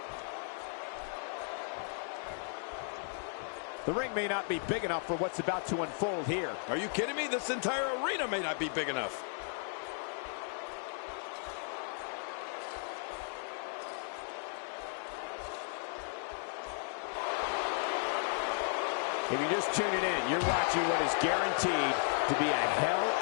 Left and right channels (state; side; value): silent; right; 54 dB below the other